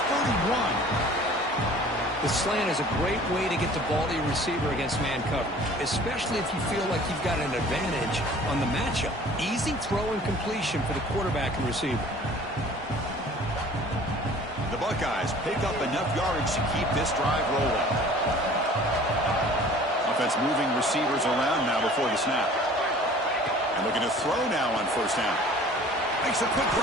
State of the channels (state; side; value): normal; both; correlation 0.48